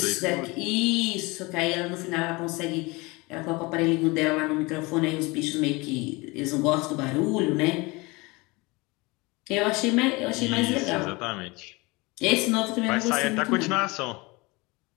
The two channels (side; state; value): right; quieter; 24.8 dB